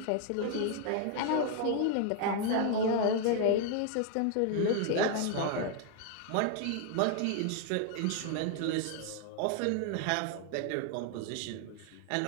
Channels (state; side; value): different; both; correlation 0.00